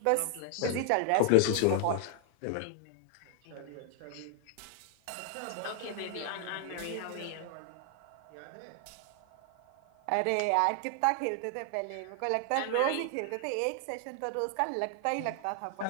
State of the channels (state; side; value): different; both; correlation 0.00